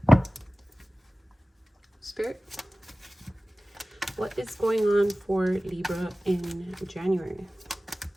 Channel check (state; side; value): normal; both; correlation 0.97